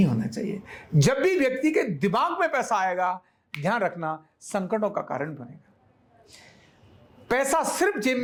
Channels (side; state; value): both; identical; correlation 1.00